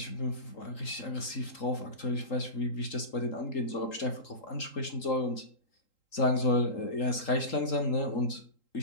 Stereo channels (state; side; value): late; right; 3.8 ms